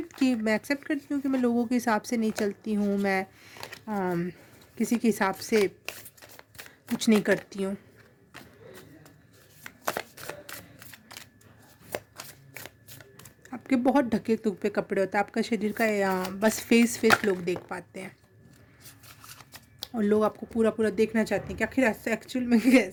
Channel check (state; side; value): identical; both; correlation 1.00